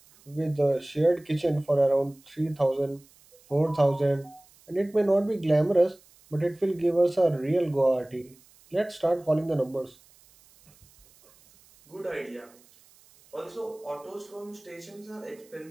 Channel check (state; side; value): noise; right; hiss, 28 dB below the sound